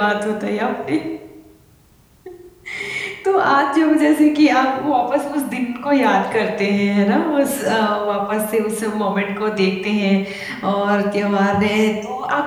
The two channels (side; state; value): both; identical; correlation 1.00